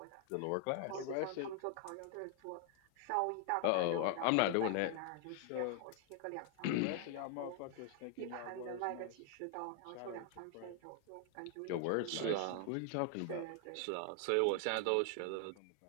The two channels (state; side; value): different; both; correlation 0.00